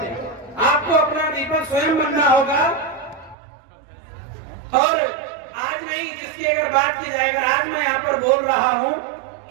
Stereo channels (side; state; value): left; drops out; at 3.4 s